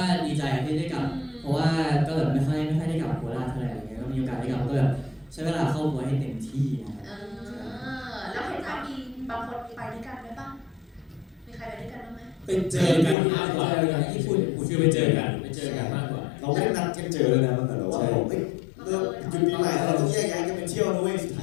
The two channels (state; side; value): drops out; right; at 13.2 s